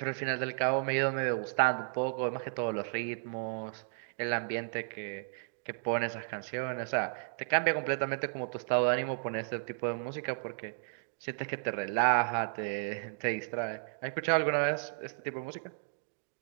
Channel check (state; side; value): silent; left; digital silence